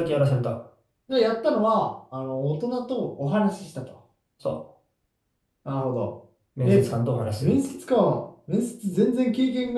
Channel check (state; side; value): identical; both; correlation 1.00